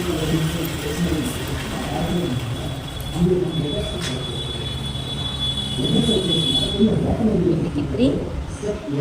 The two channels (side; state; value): both; identical; correlation 1.00